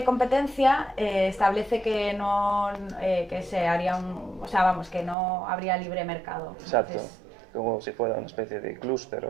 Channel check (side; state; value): left; drops out; at 5.2 s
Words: Competencia establece que no que se haría o sea, vamos, que no habría libre mercado. Exacto, Entonces, como si fuera una especie de clúster